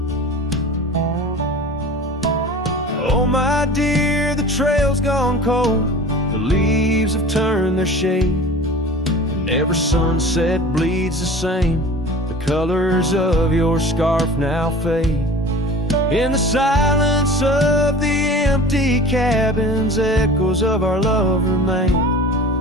Oh my dear, the trail's gone cold, the leaves have turned their shade, and every sunset bleeds the same. The colors of your scarf now fade. In the silence of the empty cabins, echoes of our love remain,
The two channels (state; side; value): normal; both; correlation 0.39